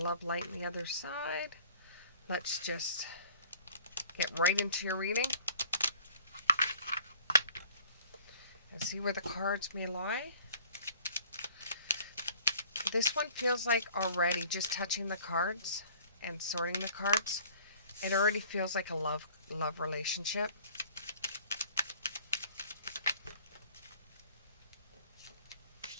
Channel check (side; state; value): both; inverted; correlation -0.52